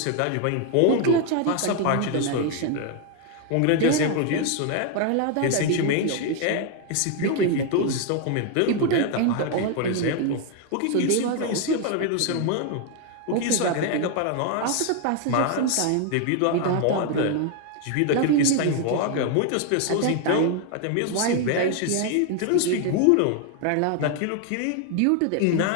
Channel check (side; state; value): both; different; correlation 0.01